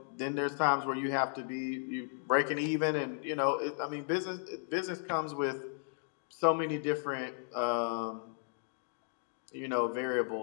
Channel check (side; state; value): right; silent; digital silence